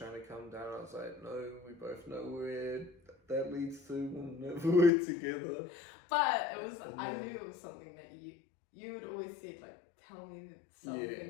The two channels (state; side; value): drops out; right; at 4.9 s